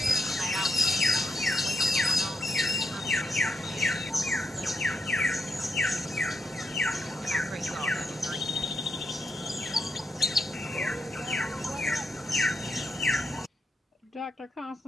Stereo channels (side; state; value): both; normal; correlation 0.82